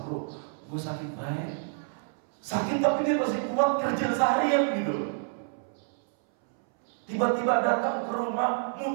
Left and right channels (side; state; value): left; silent; 59 dB below the other